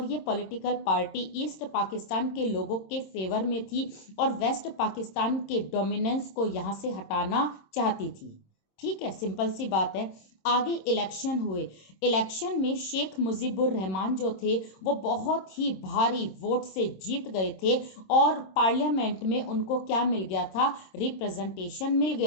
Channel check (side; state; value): right; late; 26 ms